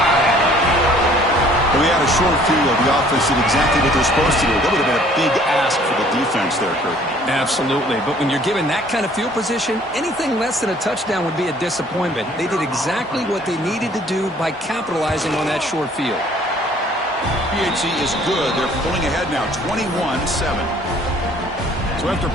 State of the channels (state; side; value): normal; both; correlation 0.56